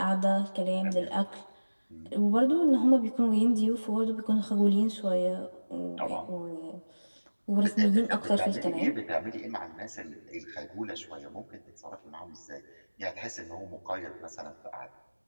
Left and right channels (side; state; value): both; inverted; correlation -1.00